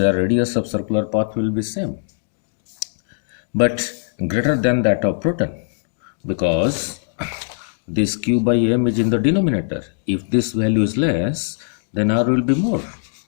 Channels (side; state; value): right; silent; digital silence